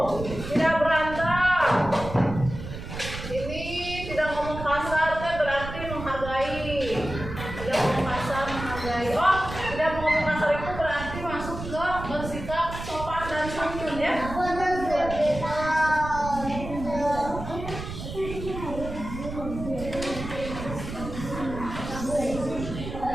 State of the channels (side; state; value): right; noise; rumble, 9 dB below the sound